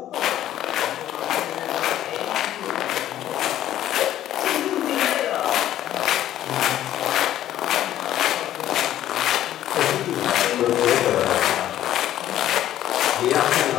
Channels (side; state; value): right; quieter; 12.4 dB